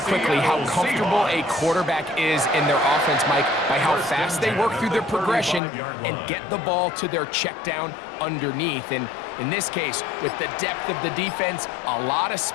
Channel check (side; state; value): right; drops out; at 5.6 s